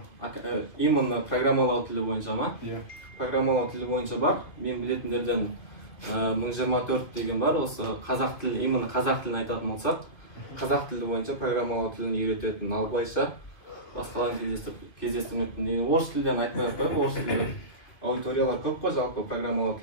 Именно программалау тілі бойынша ма? Иә. Программалау тілі бойынша бар. Мен білетіндерден 1024 деген бар. Осы қазақ тілі, именно қазақ тілін айтатын болсақ, қазақ тілі бойынша программалау тілін үйрететін, ал былайша басқаларын кездестірмеппін. Орыс тілден айтпай-ақ қояйын, орыс тілі аудиториялар көп қой жалпы программалау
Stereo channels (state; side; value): late; right; 2.8 ms